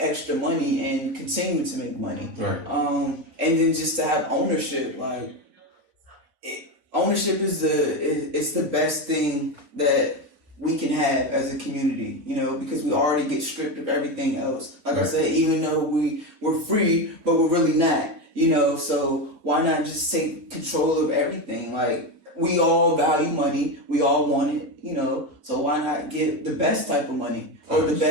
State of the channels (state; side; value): late; left; 4.3 ms